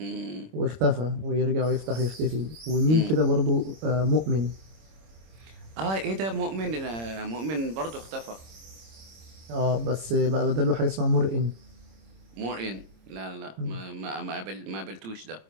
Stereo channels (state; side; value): late; left; 26 ms